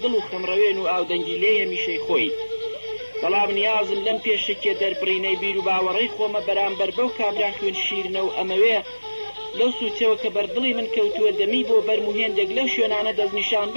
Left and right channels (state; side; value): inverted; both; correlation -1.00